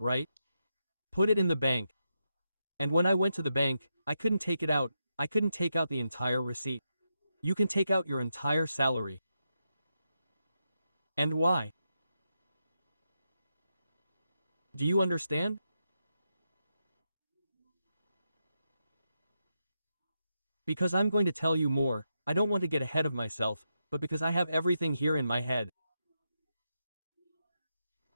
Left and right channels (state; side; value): inverted; both; correlation -0.85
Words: Put it in the bank. And when I went to the bank, I couldn't take it out, I couldn't take out the entire receipt. You can take out your entire salary. And why? Do you understand? Because I'm going to tell you more, I don't want to get ahead of myself, but because I have everything here in my head.